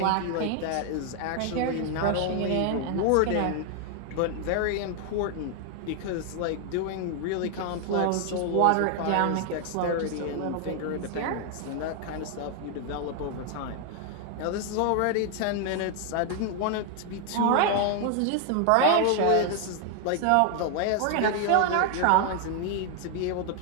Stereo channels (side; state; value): both; different; correlation 0.00